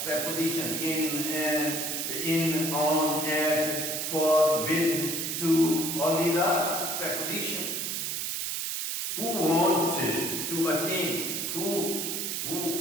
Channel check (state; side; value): noise; right; hiss, 2 dB below the sound